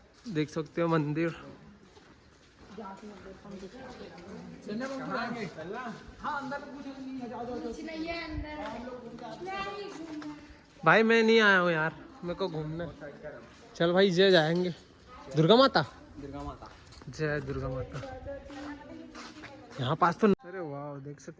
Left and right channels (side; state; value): both; identical; correlation 1.00